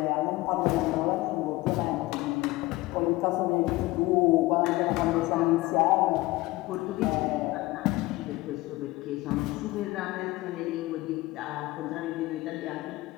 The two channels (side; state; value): right; quieter; 19.8 dB